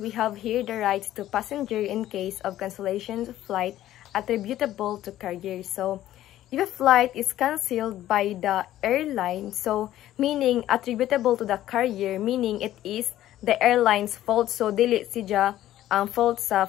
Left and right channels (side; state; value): right; quieter; 13.4 dB